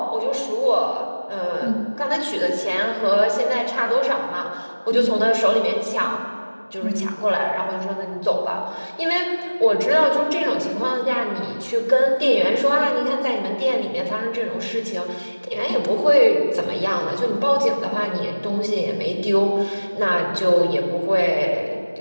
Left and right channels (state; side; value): inverted; both; correlation -1.00